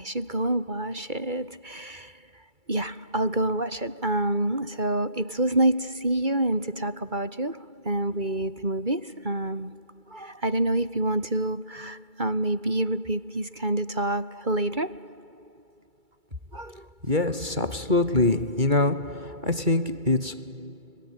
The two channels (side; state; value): left; late; 2.3 ms